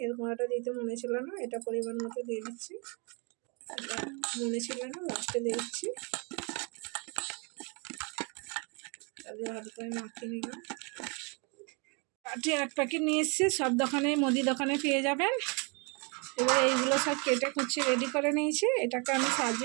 এর গুঁড়াটা দিতে মনে ছিল না, এটা পরিমাণ মতো দিয়ে দিচ্ছি। এটা মনে ছিল না, লাস্টে দিয়ে দিচ্ছি। তাদের ভালো করে মাখিয়ে নিলাম। কাঠি 1 প্যাকেট নিয়ে এসেছি, সব দোকানে মুদি দোকানে পেয়ে যাবেন। এবার এইগুলো সব কেটে কুচিয়ে রেডি করে নিয়েছি, এটাকে আমি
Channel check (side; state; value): left; quieter; 33.3 dB